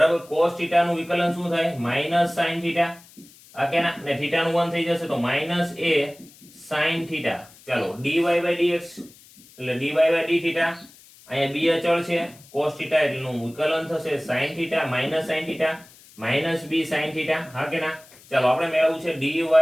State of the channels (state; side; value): noise; left; hiss, 24 dB below the sound